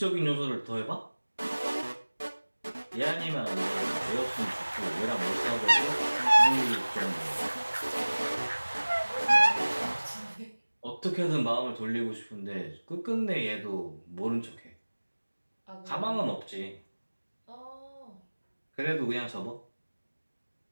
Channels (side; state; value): both; inverted; correlation -1.00